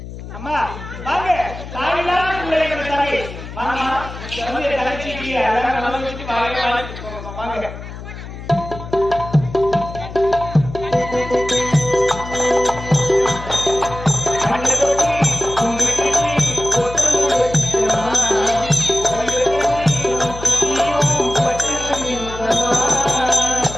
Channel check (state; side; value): noise; left; hum, 12 dB below the sound